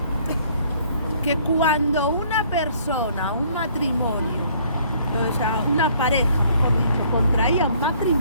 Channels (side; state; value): both; inverted; correlation -0.61